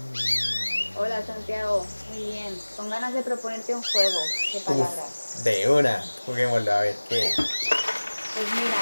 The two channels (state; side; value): inverted; both; correlation -1.00